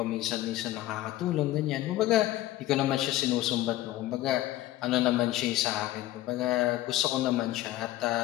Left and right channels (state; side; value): quieter; right; 15.4 dB